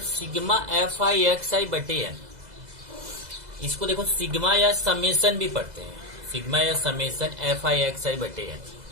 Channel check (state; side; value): late; left; 2.0 ms